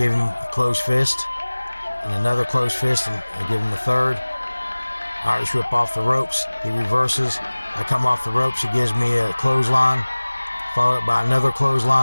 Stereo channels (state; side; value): inverted; both; correlation -1.00